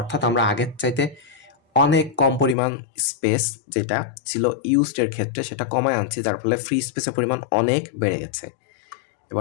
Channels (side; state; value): right; drops out; at 2.6 s